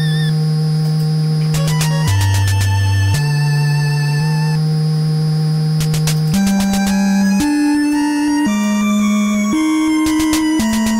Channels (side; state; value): both; identical; correlation 1.00